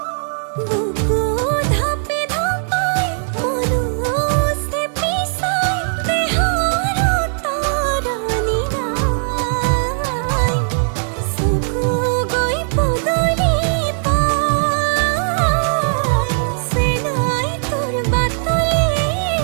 বুকু ধাপে ধাপাই মনো চেপি চাই দেহৰ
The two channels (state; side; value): silent; left; digital silence